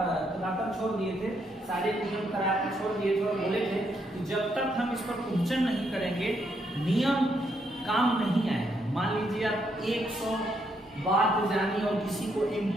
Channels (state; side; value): normal; both; correlation 0.76